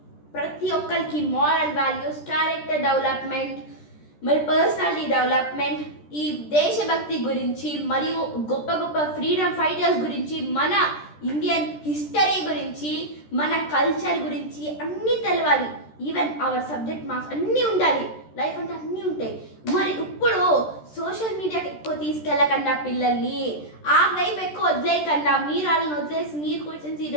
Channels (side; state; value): right; late; 13 ms